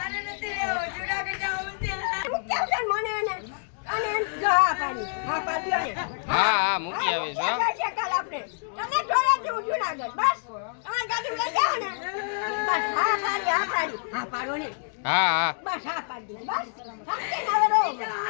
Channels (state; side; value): silent; right; digital silence